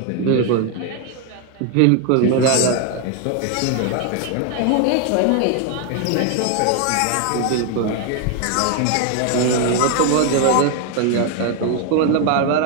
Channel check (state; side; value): different; both; correlation 0.01